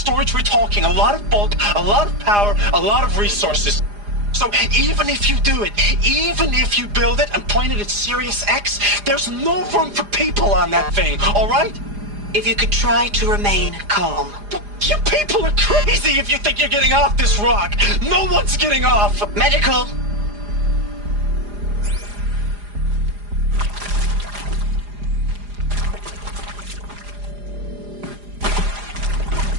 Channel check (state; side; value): late; left; 4.9 ms